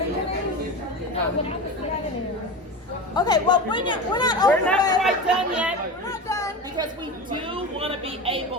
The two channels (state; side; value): normal; both; correlation 0.27